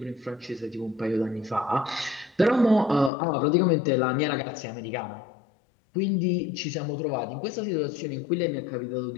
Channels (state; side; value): drops out; right; at 3.1 s